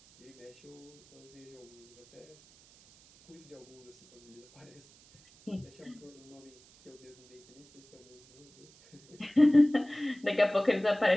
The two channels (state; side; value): noise; right; hiss, 26 dB below the sound